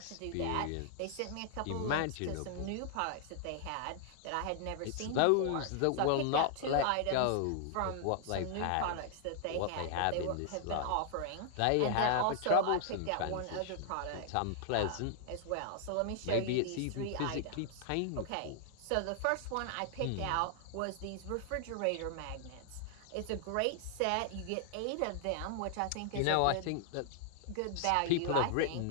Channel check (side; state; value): both; different; correlation 0.00